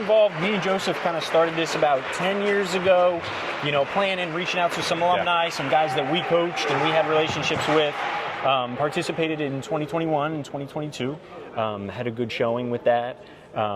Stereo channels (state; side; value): identical; both; correlation 1.00